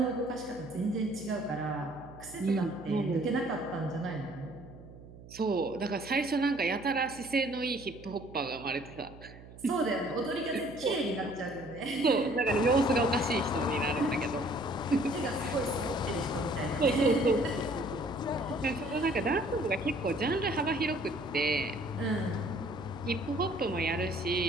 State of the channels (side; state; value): right; noise; hum, 18 dB below the sound